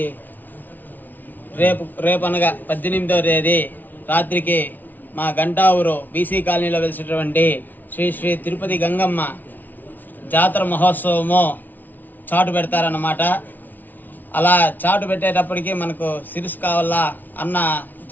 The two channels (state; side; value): late; right; 0.085 ms